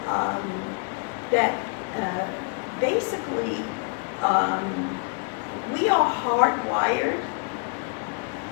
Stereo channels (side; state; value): right; quieter; 35.9 dB